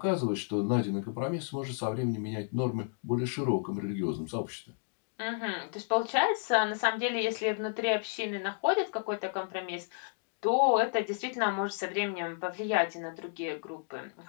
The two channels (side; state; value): right; silent; 56 dB below the other